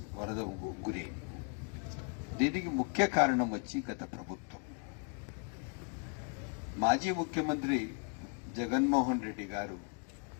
వరద గురి. దీనికి ముఖ్య కారణం వచ్చి గత ప్రభుత్వం, మాజీ ముఖ్యమంత్రి జగన్మోహన్ రెడ్డి గారు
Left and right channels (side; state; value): right; quieter; 38.8 dB